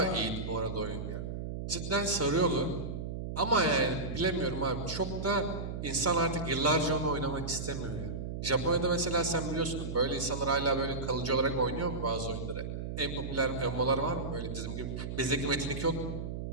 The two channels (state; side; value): noise; right; hum, 5 dB below the sound